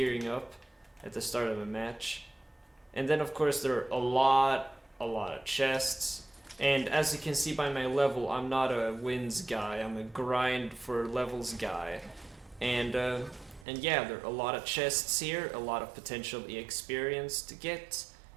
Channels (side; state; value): left; drops out; at 13.7 s